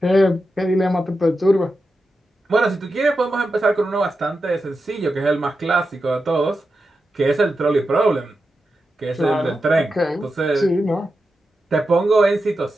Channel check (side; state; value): both; normal; correlation 0.89